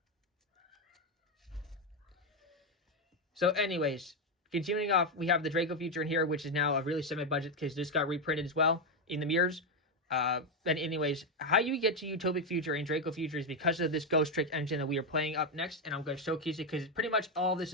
So anyways, continuing off, we have the Draco Future in here, which is now a really semi-budget because this got reprinted as well in the mirrors. And anyways, how you get to Utopic Future and Draco Future is because of this Ghost Trick engine that we are playing up next, and I'm going to showcase it because pretty much all this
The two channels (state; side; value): normal; both; correlation 0.06